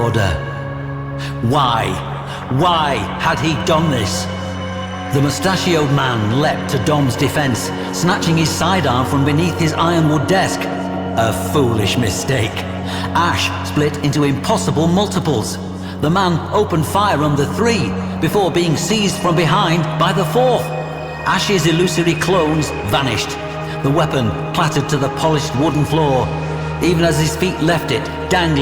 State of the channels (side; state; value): both; identical; correlation 1.00